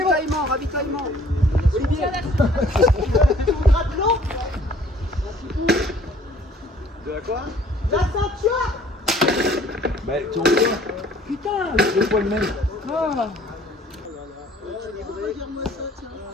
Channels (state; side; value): normal; both; correlation 0.56